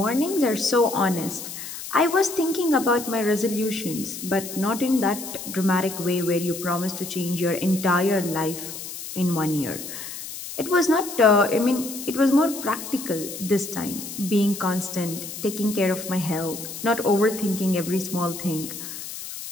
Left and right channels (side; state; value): left; noise; hiss, 9 dB below the sound